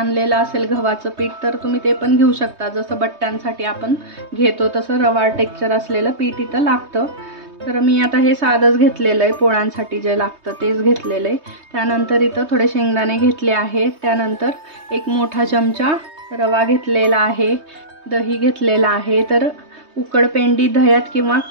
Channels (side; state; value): left; late; 3.2 ms